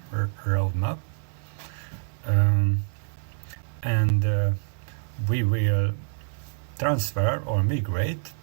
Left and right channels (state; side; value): silent; left; digital silence